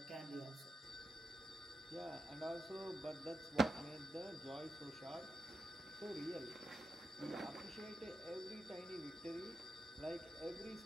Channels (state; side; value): normal; both; correlation 0.87